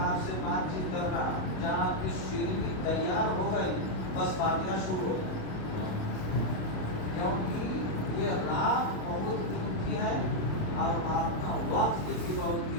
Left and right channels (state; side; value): late; right; 27 ms